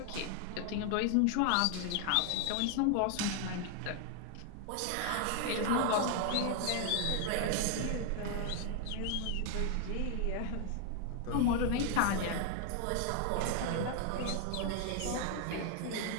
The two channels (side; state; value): both; different; correlation 0.00